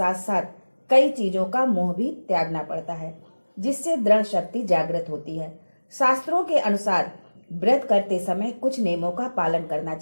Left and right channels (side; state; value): both; inverted; correlation -1.00